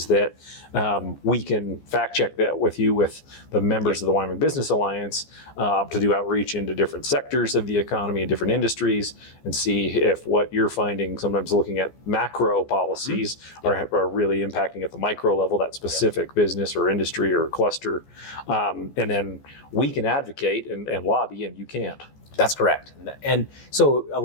that we can fact check that with you, with the members of the Wyoming Business Alliance, to do outreach into different sectors of the economy and different industries, and see if what you're finding, sometimes looking at macro policies, are really impacting at the micro level, that specific business or industry or cluster. And then we can advocate and lobby, and you can't. That's correct. And so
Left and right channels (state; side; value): late; right; 14 ms